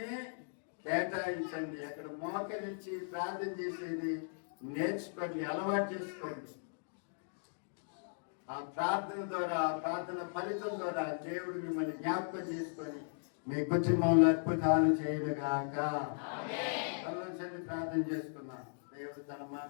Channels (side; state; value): right; silent; digital silence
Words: కేటాయించండి. అక్కడ మోకరించి ప్రార్థన చేసేది నేర్చుకోండి, అలవాటు చేసుకోండి. ఆ ప్రార్థన ద్వారా, ఆ ప్రార్థన ఫలితం ద్వారా దేవుడు మిమ్మల్ని జ్ఞాపకం చేసుకొని మీ కుటుంబంలో అద్భుతాలు చేయనుగాక. ఆలోచన ప్రార్థన చేసుకున్నాం. దేవుడు తన